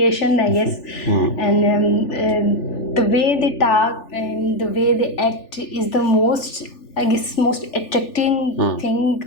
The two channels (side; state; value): right; late; 3.4 ms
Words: I guess. And the way they talk and the way they act is the most, I guess, most attracting thing